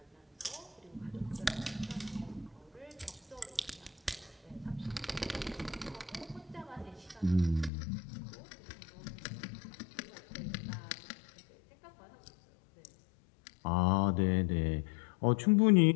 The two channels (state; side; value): drops out; right; at 7.7 s